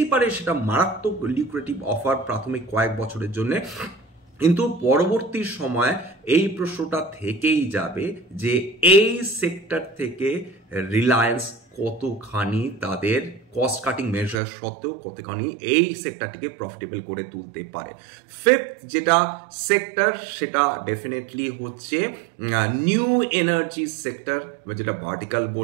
পারে সেটা মারাত্মক লিকুরেটিভ অফার প্রাথমিক কয়েক বছরের জন্য, কিন্তু পরবর্তী সময় এই প্রশ্নটা থেকেই যাবে যে এই সেক্টর থেকে রিলায়েন্স কতখানি তাদের কস্ট কাটিং মেজার সত্ত্বেও কতখানি এই সেক্টরটিকে প্রফিটেবল করে তুলতে পারে। ফিফথ যেটা সেক্টর সেটা ডেফিনেটলি হচ্ছে নিউ এনার্জি সেক্টর, যেটা ভার্টিক্যাল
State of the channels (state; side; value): drops out; left; at 14.4 s